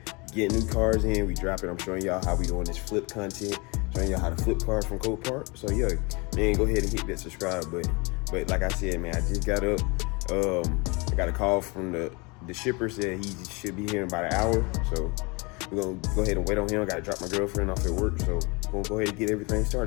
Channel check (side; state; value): right; quieter; 28.2 dB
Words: getting new cars in, we dropping. I'm showing y'all how we doing this flip content, showing y'all how to flip cars from Copart. So yeah, man, go ahead and hit that subscribe button. But like I said, man, I just got up. I got a call from the shipper, said he should be here in about an hour, so we're gonna go ahead and wait on him. I gotta drop my girlfriend off at work, so we're gonna go ahead and get everything